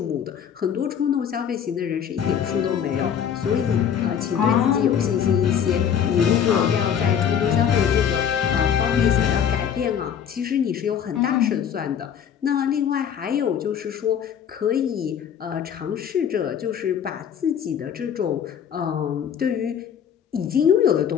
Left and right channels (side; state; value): right; quieter; 8.4 dB